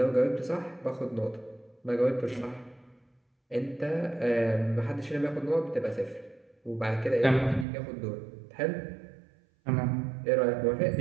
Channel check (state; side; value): drops out; left; at 7.7 s